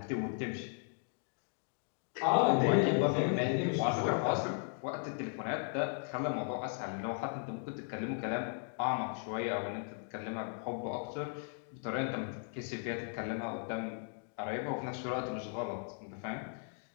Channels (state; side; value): silent; right; 53 dB below the other